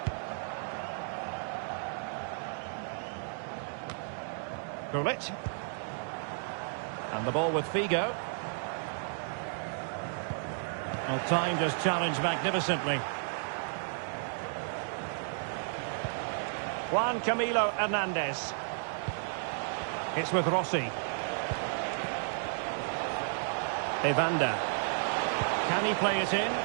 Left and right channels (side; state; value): left; silent; digital silence